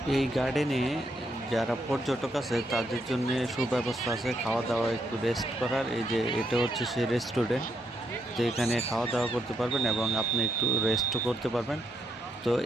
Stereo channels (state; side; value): normal; both; correlation 0.78